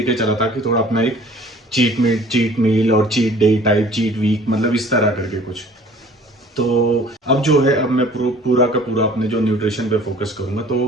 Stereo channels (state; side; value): normal; both; correlation 0.50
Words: चला था कि थोड़ा अपना एक चीट मील और cheat day type, cheat week, मतलब इस तरह करके कुछ। तो अब जो है, अब मैं पूरा का पूरा अपने जो न्यूट्रिशन पे फोकस करूंगा। तो